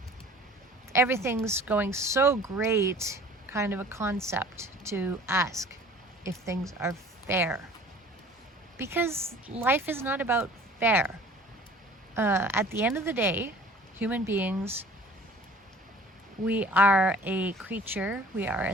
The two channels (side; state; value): both; normal; correlation 0.47